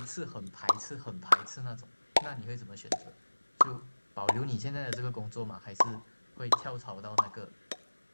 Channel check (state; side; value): inverted; both; correlation -1.00